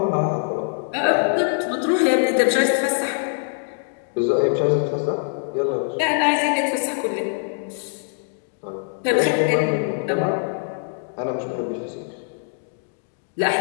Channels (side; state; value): right; silent; digital silence